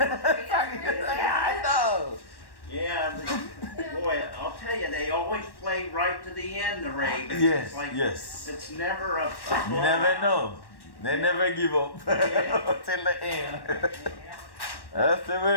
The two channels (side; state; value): right; late; 1.1 ms